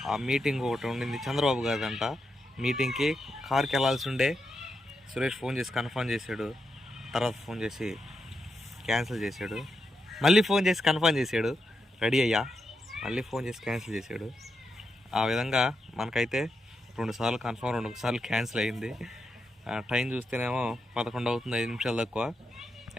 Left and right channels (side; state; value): both; normal; correlation 0.85